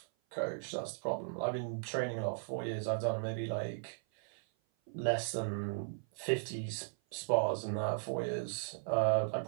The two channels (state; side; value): silent; left; 53 dB below the other